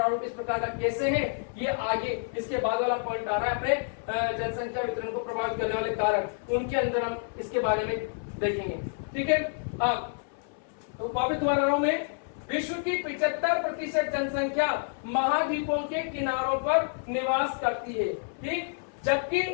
इस प्रकार का कैसे है, ये आगे इसके बाद वाला पॉइंट आ रहा है अपने जनसंख्या वितरण को प्रभावित करने वाले कारक, उनके अंदर हम इसके बारे में देखेंगे। ठीक है, तो वापिस दोबारा रहा हूं मैं, विश्व की 75% जनसंख्या महाद्वीपों के किनारों पर निवास करती है। ठीक, जबकि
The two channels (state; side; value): silent; right; 59 dB below the other